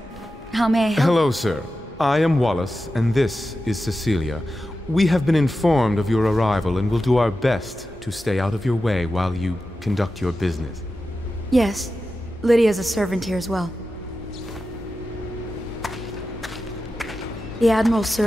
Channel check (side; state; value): both; normal; correlation 0.92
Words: How may I help? Hello, sir. I am Wallace, and this is Cecilia. We have been informed of your arrival and will do our best to stay out of your way while you conduct your business. Yes. Lydia's a servant here as well. The Admiral